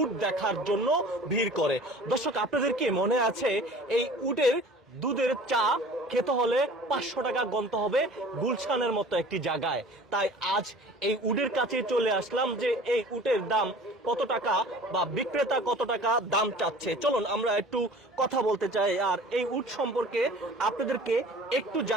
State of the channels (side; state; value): both; normal; correlation 0.45